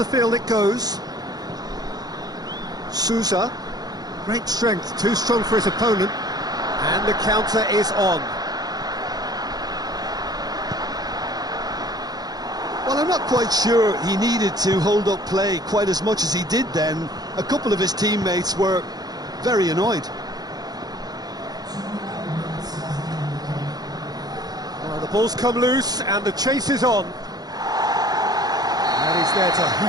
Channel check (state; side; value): late; left; 0.19 ms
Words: field it goes. Sousa, great strength, too strong for his opponent. And the counter is on. Well, I'm not quite sure he needed to hold up play quite as much as he did then. A couple of his teammates were very annoyed. Well, the ball's come loose and the chase is on. And he's there to